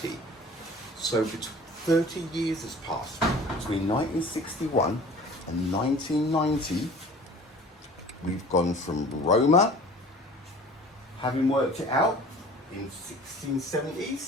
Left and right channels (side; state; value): both; normal; correlation 0.45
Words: So 30 years has passed between 1961 and 1990. We've gone from Roemer, having worked it out in